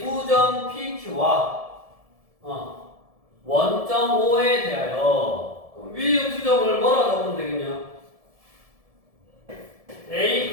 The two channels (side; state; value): left; late; 1.7 ms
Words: 두 점 PQ와 원점 O에 대하여 위의 두 점을 뭐라 적으면 되겠냐? A,